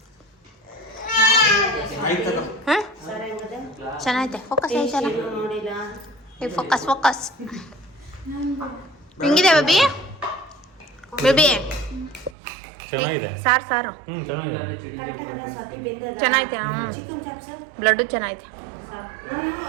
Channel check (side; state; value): left; drops out; at 12.4 s